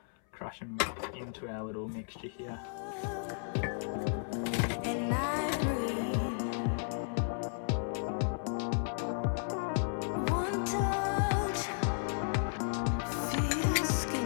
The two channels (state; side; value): silent; right; 55 dB below the other